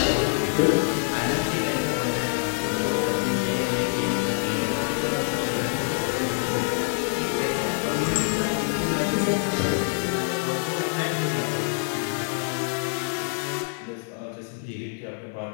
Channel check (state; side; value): silent; right; 61 dB below the other